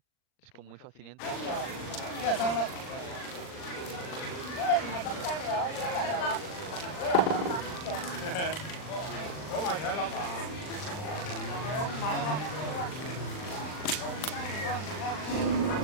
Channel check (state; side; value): late; right; 39 ms